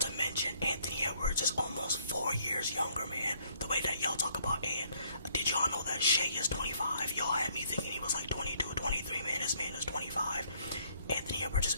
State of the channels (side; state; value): both; inverted; correlation -0.66